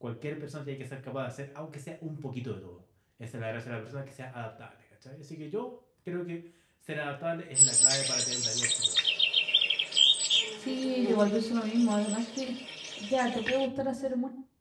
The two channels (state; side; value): identical; both; correlation 1.00